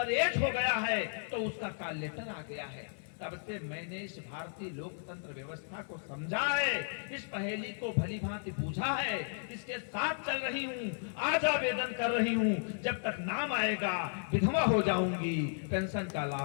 एज हो गया है तो उसका कॉल लेटर आ गया है। तब से मैंने इस भारतीय लोकतंत्र व्यवस्था को समझा है, इस पहेली को भली भांति बूझा है, इसके साथ चल रही हूँ, आज आवेदन कर रही हूँ, जब तक नाम आएगा विधवा हो जाऊंगी, पेंशन का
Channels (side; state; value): right; silent; digital silence